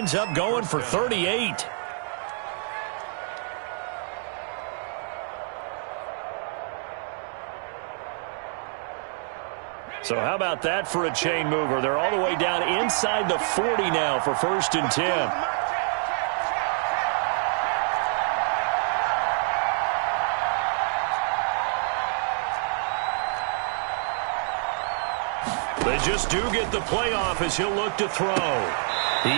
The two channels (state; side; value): silent; left; 58 dB below the other